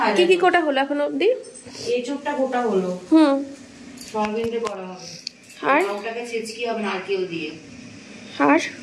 হাইজাই কি কোটা হলো এখন অবধি? এই চুপটা গোটা হলো, সয়াবিনটা করা হবে, আর ওটাকে ছেচকি হবে নারকেল দিয়ে, আর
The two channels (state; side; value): identical; both; correlation 1.00